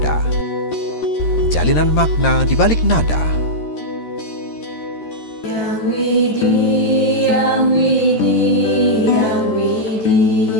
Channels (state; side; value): late; right; 13 ms